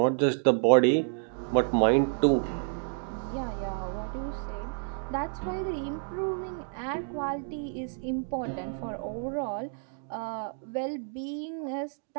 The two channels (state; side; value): silent; left; 58 dB below the other